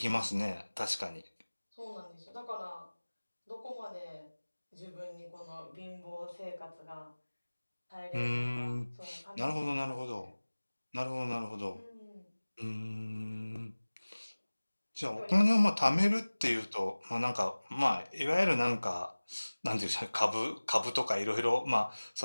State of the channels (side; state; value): both; inverted; correlation -1.00